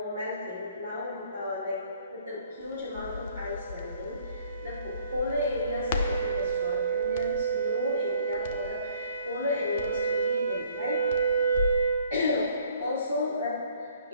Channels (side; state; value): both; inverted; correlation -0.60